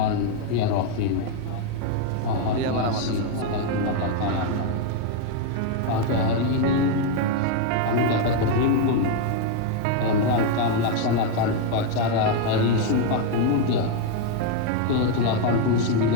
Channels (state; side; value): different; both; correlation 0.01